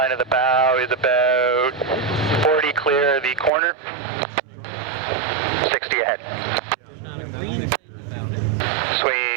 of the bow is about 40 clear of the corner. 60 ahead.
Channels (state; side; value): drops out; left; at 3.5 s